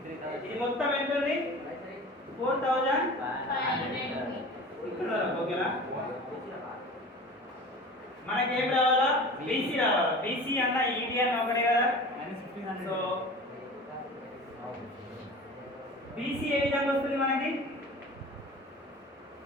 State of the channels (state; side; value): normal; both; correlation 0.38